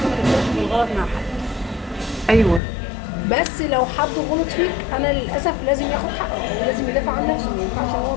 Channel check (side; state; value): right; drops out; at 2.6 s